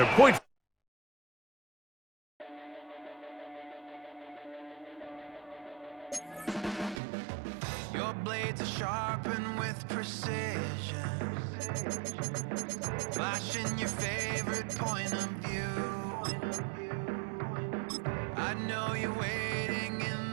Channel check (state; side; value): drops out; left; at 7.0 s